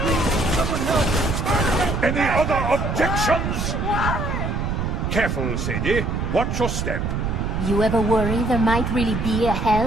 Any other objections? Careful, Sadie. Watch your step. You ever worry there might really be a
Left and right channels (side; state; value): right; noise; rumble, 1 dB below the sound